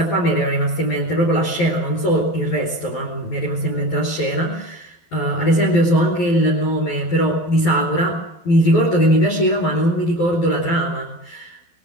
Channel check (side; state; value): right; late; 12 ms